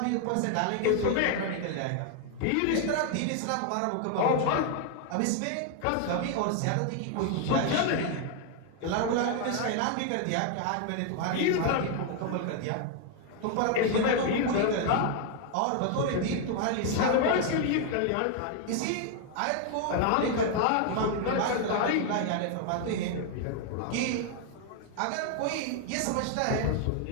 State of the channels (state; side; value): different; both; correlation 0.00